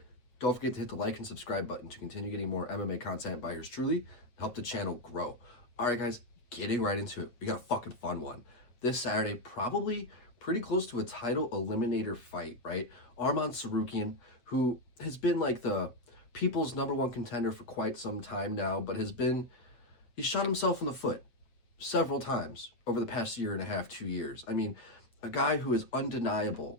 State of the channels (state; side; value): late; right; 8.0 ms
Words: don't forget to hit the like and subscribe button to continue getting more MMA content by yours truly, help the channel grow. All right, guys, getting right into it. We got a fucking fun one. This Saturday, probably pretty close to a title eliminator fight, right? Arman Tsarukyan, who has been like the people's #1 contender for quite some time now, but he shot himself in the foot several times over the past year and a half, 2 years. I mean, a guy who is